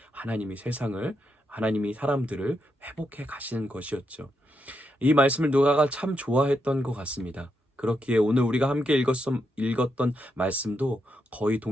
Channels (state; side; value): normal; both; correlation 0.82